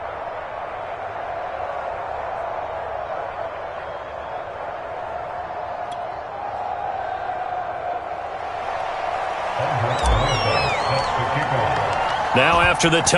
Now after the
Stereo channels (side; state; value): both; identical; correlation 1.00